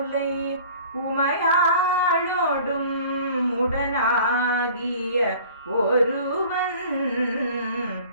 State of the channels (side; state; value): both; inverted; correlation -0.47